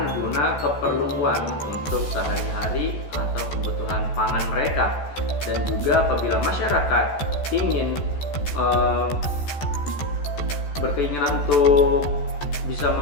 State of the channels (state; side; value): late; right; 14 ms